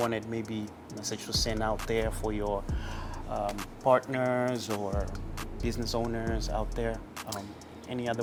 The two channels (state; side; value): identical; both; correlation 1.00